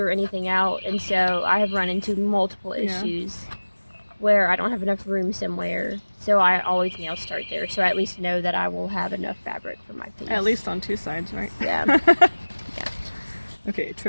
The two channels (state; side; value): inverted; both; correlation -1.00